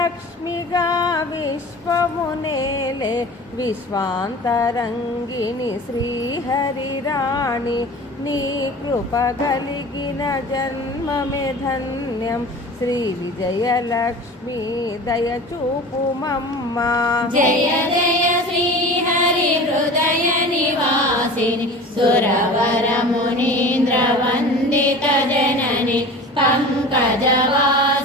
విశ్వమునేలే విశ్వాంతరంగిణి శ్రీహరిరాణి నీ కృప కలిగిన జన్మమే ధన్యం శ్రీ విజయలక్ష్మి దయచూపుమమ్మా. జయ జయ శ్రీ హరి హృదయ నివాసిని సురవర మునీంద్ర వందిత జనని పంకజవాసిని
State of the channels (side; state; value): both; normal; correlation 0.37